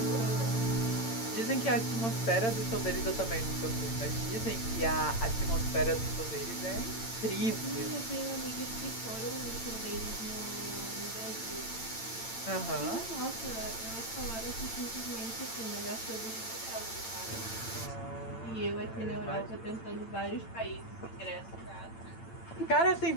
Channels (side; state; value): right; late; 8.8 ms